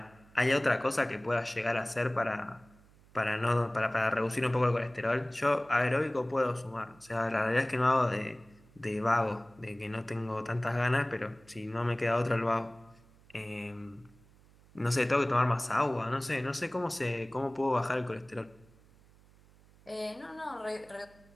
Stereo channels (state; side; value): noise; right; hum, 27 dB below the sound